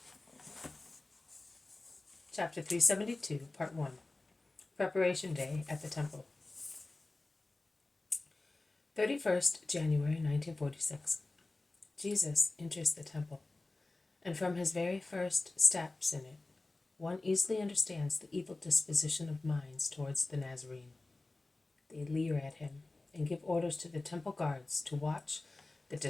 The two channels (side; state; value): right; quieter; 3.1 dB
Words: Chapter 372, Part 1, Preparation Day at the Temple. 31st January 1946. Jesus enters the temple, and from his very first steps in it, one easily understands the evil disposition of minds towards the Nazarene. They leer at him and give orders to the temple guards to watch the